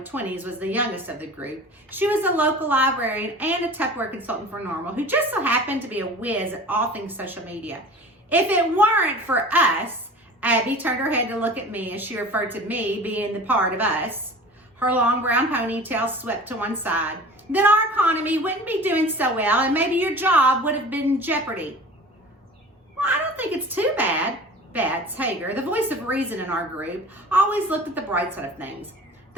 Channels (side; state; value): both; normal; correlation 0.40